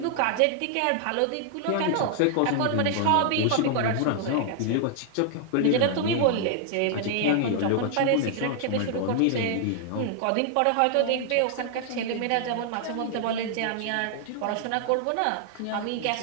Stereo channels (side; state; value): both; different; correlation 0.00